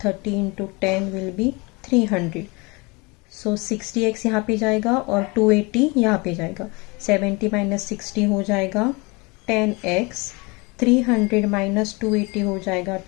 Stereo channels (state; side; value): quieter; right; 27.1 dB